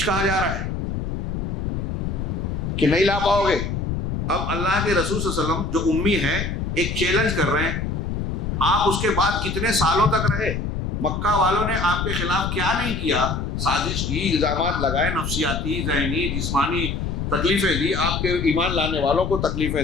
کہا جا رہا ہے کہ نہیں لا پاؤ گے۔ اب اللہ کے رسول صلی اللہ علیہ وسلم جو امی ہیں ایک چیلنج کر رہے ہیں، آپ اس کے بعد کتنے سالوں تک رہے؟ مکہ والوں نے آپ کے خلاف کیا نہیں کیا، سازش کی، الزامات لگائے، نفسیاتی، ذہنی، جسمانی تکلیفیں دی، آپ کے ایمان لانے والوں کو تکلیفیں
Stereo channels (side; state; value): left; noise; rumble, 2 dB below the sound